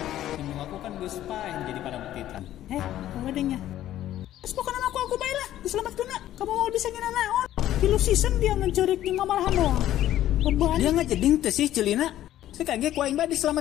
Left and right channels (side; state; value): right; quieter; 12.9 dB